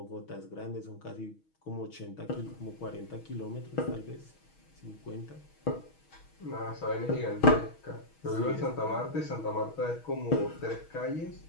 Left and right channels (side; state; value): right; late; 6.3 ms